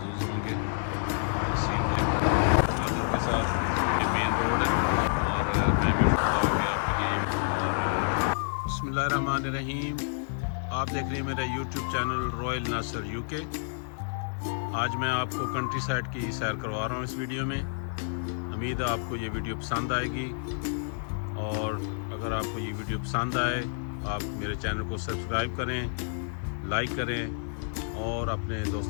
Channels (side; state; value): right; silent; digital silence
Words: होंगे माजूर के साथ। ये मेन रोड है और मैं बिस्मिल्लाहिर्रहमानिर्रहीम। आप देख रहे हैं मेरा यूट्यूब चैनल रॉयल नासर यूके। आज मैं आपको कंट्री साइड की सैर करवा रहा हूँ इस वीडियो में। उम्मीद है आपको ये वीडियो पसंद आएगी और अगर आपको ये वीडियो पसंद आए आप मेरे चैनल को सब्सक्राइब करें, लाइक करें और अपने